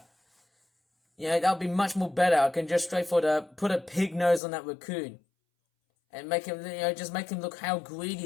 That would be much more better. I can just straightforward put a pig nose on that raccoon and make him, just make him look how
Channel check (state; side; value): drops out; right; at 4.4 s